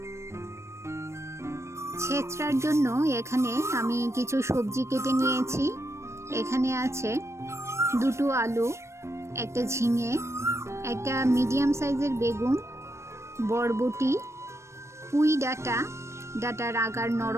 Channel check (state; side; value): late; left; 0.13 ms